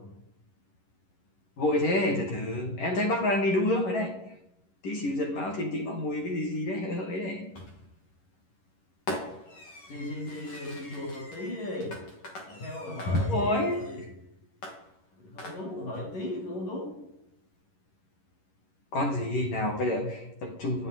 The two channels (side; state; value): right; late; 11 ms